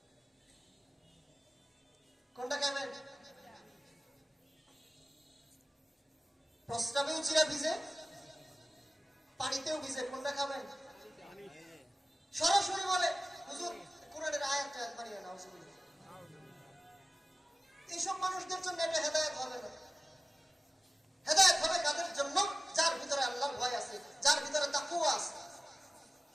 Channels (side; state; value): both; normal; correlation 0.96